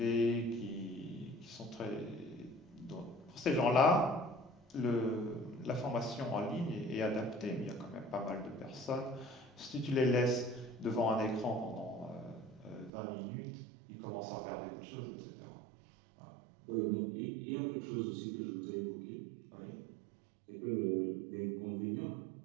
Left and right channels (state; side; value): drops out; left; at 12.9 s